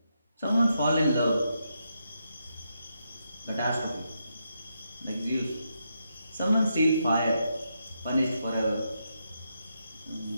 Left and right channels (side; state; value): both; inverted; correlation -0.82